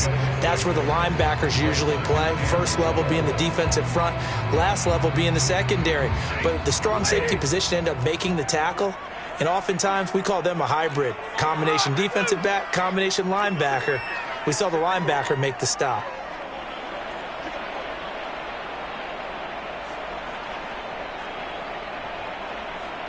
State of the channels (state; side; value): identical; both; correlation 1.00